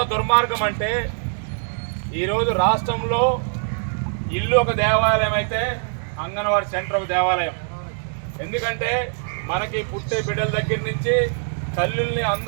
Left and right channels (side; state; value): left; silent; 64 dB below the other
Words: దుర్మార్గం అంటే, ఈరోజు రాష్ట్రంలో ఇల్లు ఒక దేవాలయం అయితే అంగన్వాడీ సెంటర్ ఒక దేవాలయం. ఎందుకంటే మనకి పుట్టే బిడ్డల దగ్గర నుంచి తల్లుల్ని